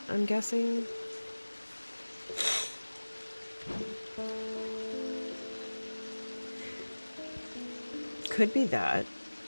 I'm guessing. Could be that.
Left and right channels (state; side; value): inverted; both; correlation -1.00